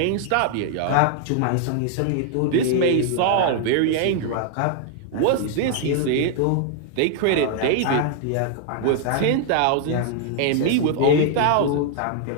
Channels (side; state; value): both; different; correlation 0.00